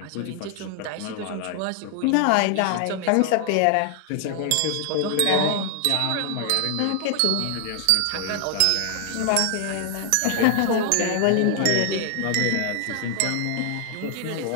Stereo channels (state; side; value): different; both; correlation 0.00